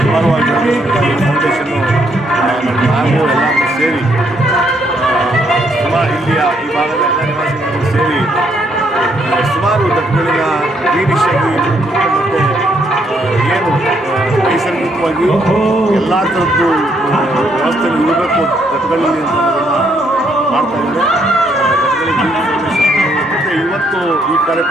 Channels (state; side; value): normal; both; correlation 0.72